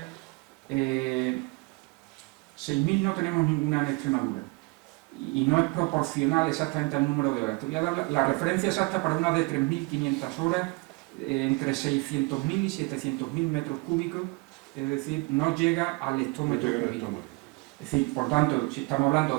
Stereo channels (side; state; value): left; quieter; 27.8 dB